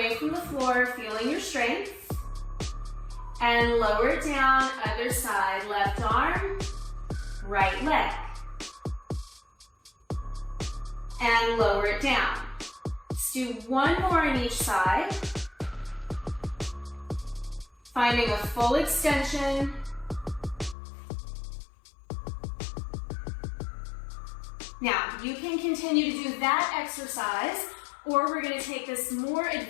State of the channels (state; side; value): drops out; right; at 20.8 s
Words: from the floor, feeling your strength. And lower it down, other side. Left arm, right leg. And lower it down. Let's do 1 more on each side. Finding a full extension. Now, you can continue to do that exercise, or we're going to take this more